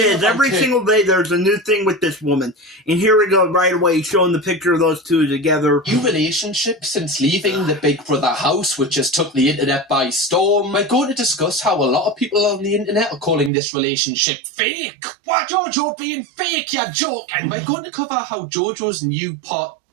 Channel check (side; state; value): left; drops out; at 13.5 s